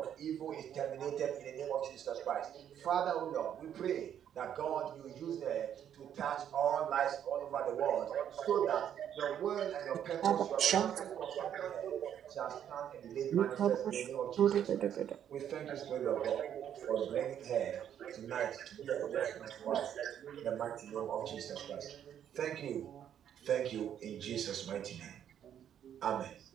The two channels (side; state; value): left; quieter; 9.6 dB